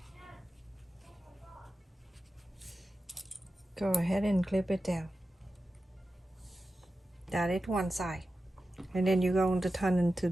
Go ahead and clip it down. That is one side. And then you're going to turn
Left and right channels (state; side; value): normal; both; correlation 0.93